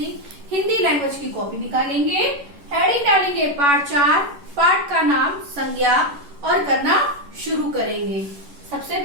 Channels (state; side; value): late; left; 11 ms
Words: हिंदी लैंग्वेज की कॉपी निकालेंगे, हेडिंग डालेंगे पाठ 4, पाठ का नाम संज्ञा और करना शुरू करेंगे। सबसे